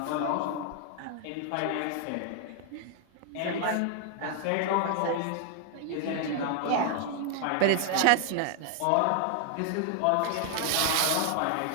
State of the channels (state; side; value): different; both; correlation 0.00